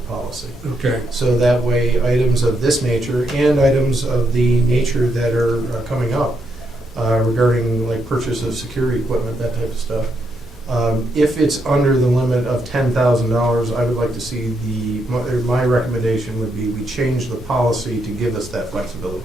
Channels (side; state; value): both; normal; correlation 0.79